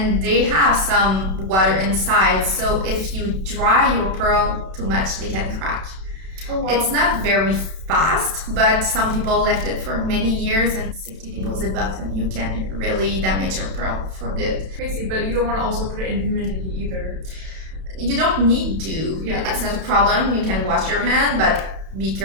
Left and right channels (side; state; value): left; late; 31 ms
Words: they have some water inside. So if you dry your pearl too much, they can crack. Oh, wow. It's not very fast, but some people left it for many years in safety deposit box, and you can really damage your pearl for good. Crazy, but you don't want to also put it in humidity either. You don't need to. Yeah. It's not a problem. You can wash your hand, but be